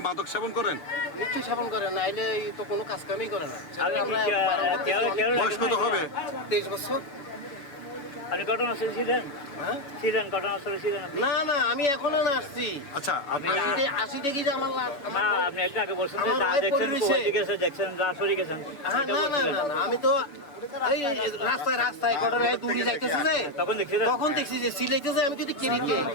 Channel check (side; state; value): right; late; 7.0 ms